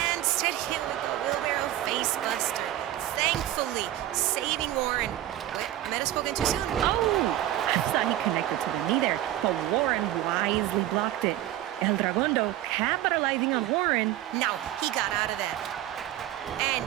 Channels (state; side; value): quieter; left; 13.6 dB